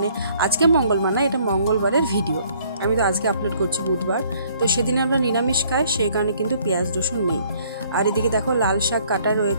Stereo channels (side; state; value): both; inverted; correlation -0.61